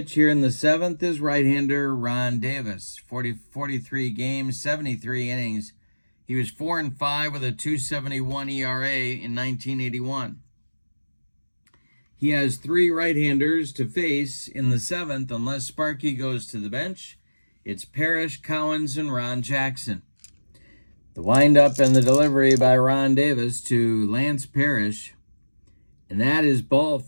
here in the 7th is right-hander Ron Davis. 43 games, 73 innings. He was 4-5 with a 2.71 ERA in 1981. He has 3 right-handers to face in the 7th unless Sparky goes to the bench. It's Parrish, Cowens, and Ron Jackson. The windup and the delivery by Ron Davis to Lance Parrish. And that is ball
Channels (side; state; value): both; inverted; correlation -1.00